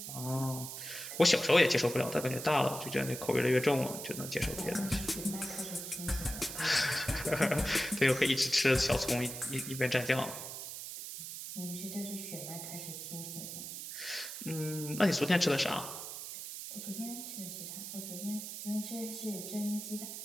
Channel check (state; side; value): noise; right; hiss, 8 dB below the sound